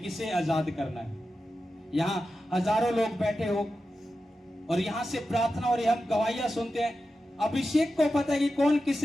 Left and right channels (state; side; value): normal; both; correlation 0.91